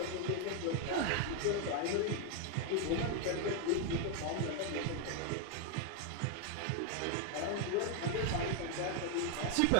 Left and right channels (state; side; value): different; both; correlation 0.01